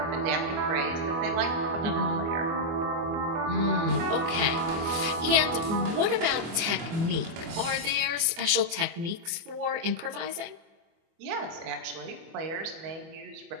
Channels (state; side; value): late; left; 24 ms